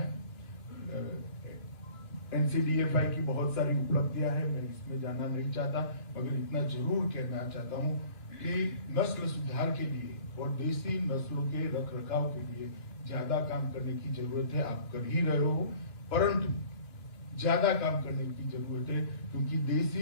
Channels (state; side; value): late; right; 2.8 ms